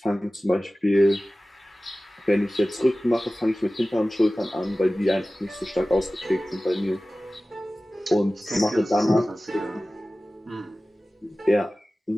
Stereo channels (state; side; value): normal; both; correlation 0.97